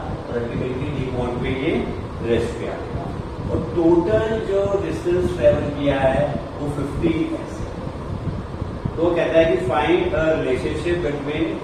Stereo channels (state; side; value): identical; both; correlation 1.00